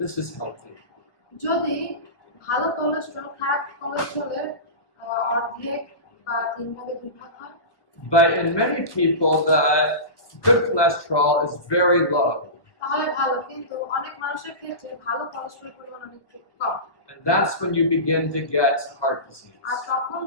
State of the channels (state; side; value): late; right; 1.3 ms